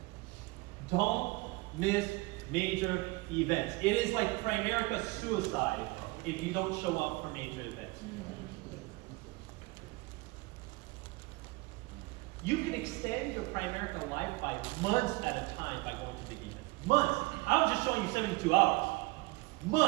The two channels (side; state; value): left; quieter; 23.5 dB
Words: Don't miss major events. It is like Primerica suicide if you don't show up for major events. You can extend your Primerica life by months at a time by going to big events. Months. I was just showing you 72 hours.